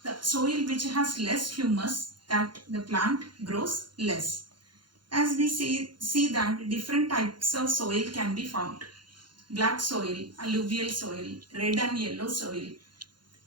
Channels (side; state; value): left; late; 0.71 ms